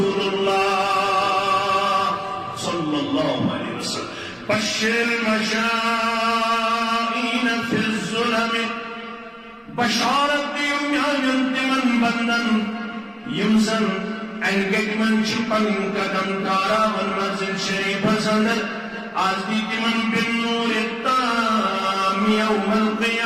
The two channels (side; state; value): both; identical; correlation 1.00